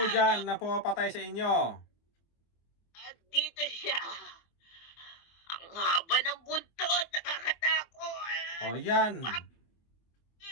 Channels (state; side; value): late; right; 24 ms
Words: dyan na pumapatay sa inyo. At dito siya. Ang haba ng buntot, nakakatakot. O yan.